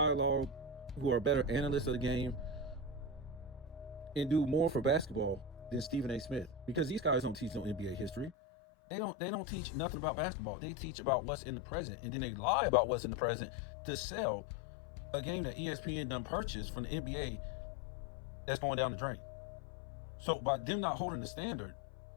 who are better analysts of the game, and do more for basketball than Stephen A. Smith. Because these guys don't teach no NBA history. They don't teach nothing about basketball. They teach about what's in the present, and then they lie about what's in the present to sell a game that ESPN done purchased from the NBA that's going down the drain. So by them not holding the standard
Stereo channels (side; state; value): right; drops out; at 8.3 s